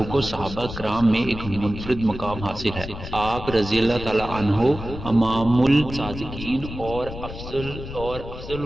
کو صحابہ کرام میں ایک منفرد مقام حاصل ہے۔ آپ رضی اللہ تعالی عنہ امام الصادقین اور افضل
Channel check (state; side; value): noise; left; rumble, 10 dB below the sound